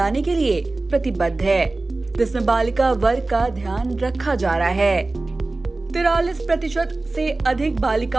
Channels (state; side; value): quieter; left; 3.2 dB